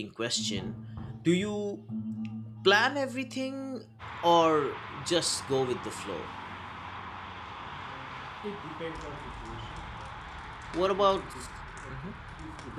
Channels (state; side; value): identical; both; correlation 1.00